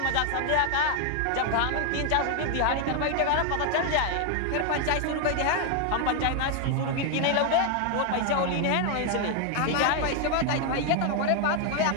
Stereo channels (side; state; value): both; different; correlation 0.00